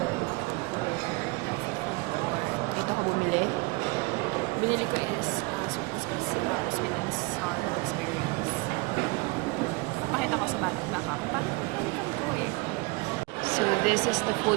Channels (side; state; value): left; quieter; 26.0 dB